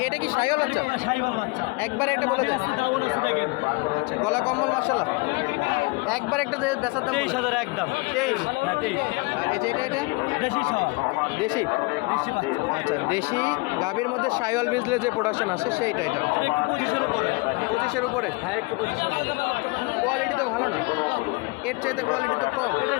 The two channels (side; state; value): right; quieter; 27.4 dB